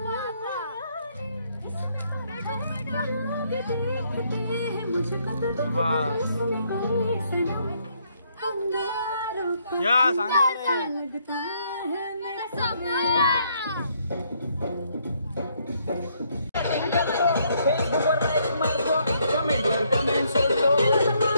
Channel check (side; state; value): both; inverted; correlation -0.71